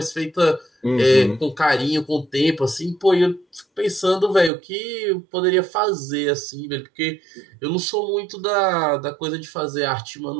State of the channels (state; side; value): drops out; left; at 4.5 s